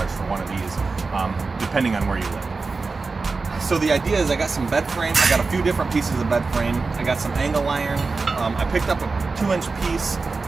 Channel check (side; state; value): left; quieter; 4.1 dB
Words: for one of these, depending on where you live. So the idea is I got some bed frame, I got a few different pieces of bed frame, I got some angle iron, I picked up a 2-inch piece